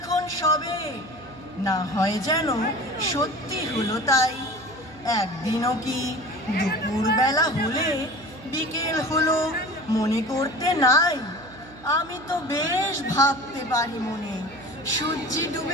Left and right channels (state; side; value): noise; right; hum, 20 dB below the sound